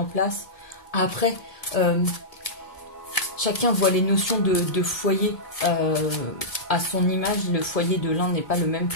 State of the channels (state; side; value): late; right; 1.7 ms